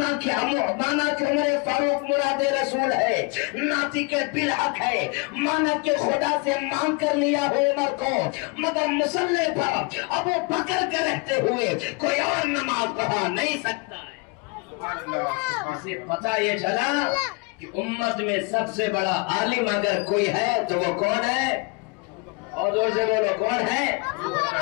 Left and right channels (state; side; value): quieter; right; 29.8 dB